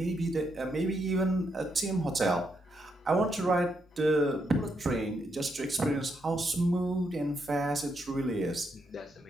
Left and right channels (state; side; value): normal; both; correlation 0.79